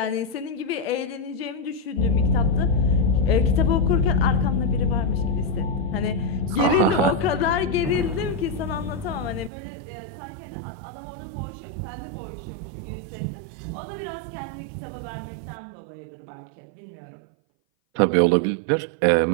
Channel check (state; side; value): drops out; left; at 9.5 s